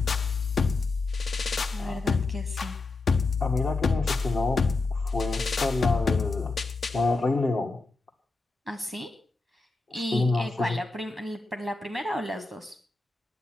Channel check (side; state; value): right; quieter; 3.5 dB